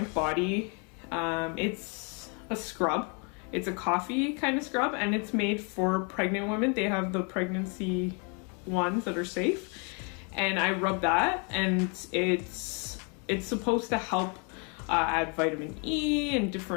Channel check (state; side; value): quieter; right; 35.6 dB